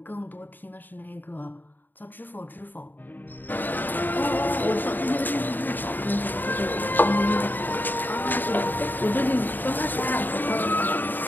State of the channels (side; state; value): right; late; 0.090 ms